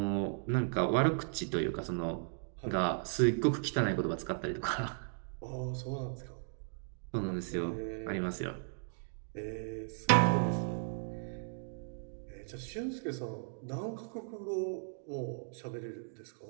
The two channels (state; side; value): silent; left; digital silence